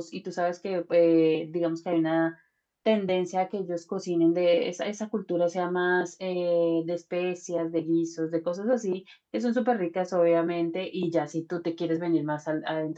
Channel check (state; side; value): identical; both; correlation 1.00